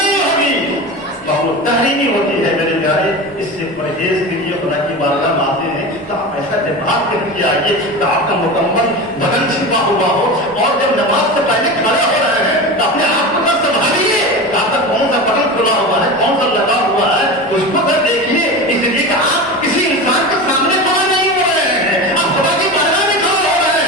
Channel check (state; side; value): normal; both; correlation 0.27